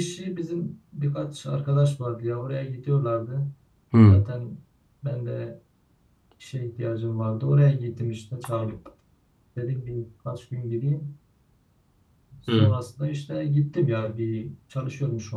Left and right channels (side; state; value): both; identical; correlation 1.00